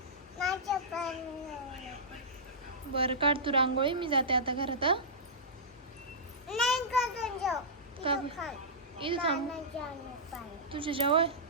बरं काढ तू रांगोळी, मी जाते आता घरात. इथं थांब तुझ्या जवळ.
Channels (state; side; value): normal; both; correlation -0.16